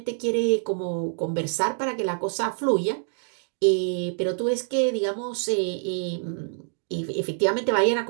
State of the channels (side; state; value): left; silent; digital silence